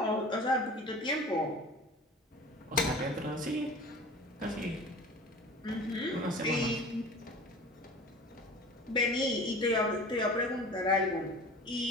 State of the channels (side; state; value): both; normal; correlation 0.40